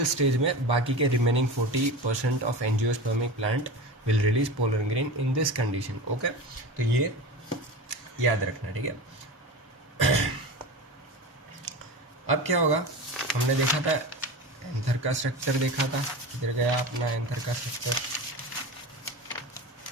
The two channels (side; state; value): both; normal; correlation 0.28